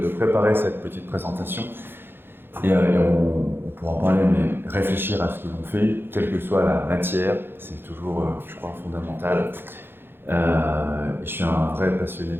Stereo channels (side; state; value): left; late; 0.10 ms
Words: préparer cette petite présentation. Et on pourra en parler, mais réfléchir à ce que l'on fait, quelle que soit la matière, c'est toujours, je crois, fondamental. Et je suis un vrai passionné